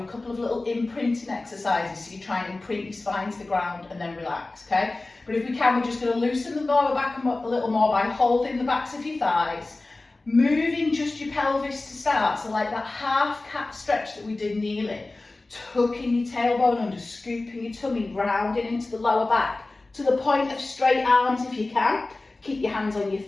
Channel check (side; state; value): right; quieter; 3.1 dB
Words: a couple of little imprinting exercises so you try and imprint your spine to the ground and then relax, okay? But if we can, we're just going to loosen the lower back a little more by holding the backs of your thighs. Moving just your pelvis to start, so like that half cat stretch that we did kneeling. Tucking your tailbone under, scooping your tummy, rounding into the lower back. To the point of straight arms if you can. Keep your hands on your